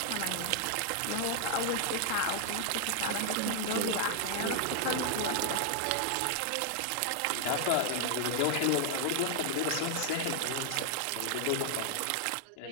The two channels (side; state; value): both; different; correlation 0.00